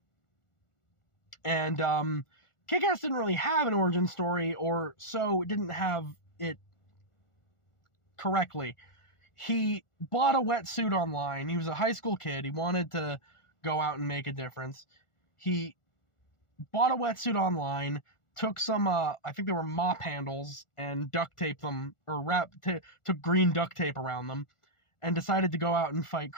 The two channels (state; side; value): late; right; 1.4 ms